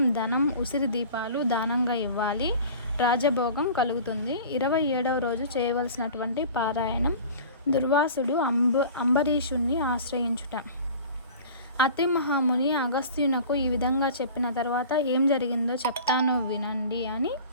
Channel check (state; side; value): inverted; both; correlation -0.41